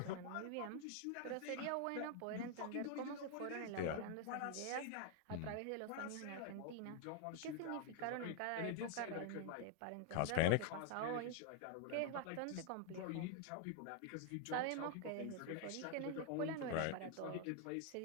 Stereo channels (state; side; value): different; both; correlation 0.00